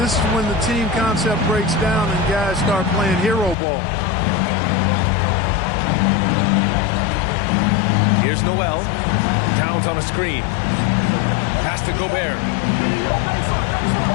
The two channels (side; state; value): right; drops out; at 3.6 s